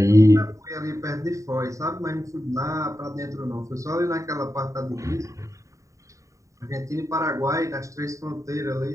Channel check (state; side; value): late; left; 0.16 ms